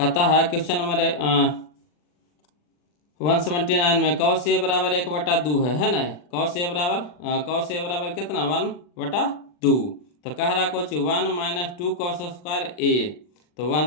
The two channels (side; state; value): right; late; 40 ms